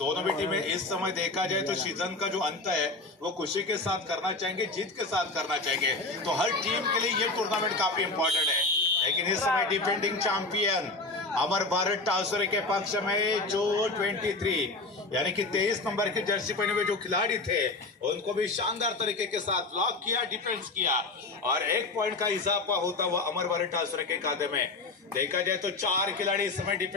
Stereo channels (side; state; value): right; quieter; 3.3 dB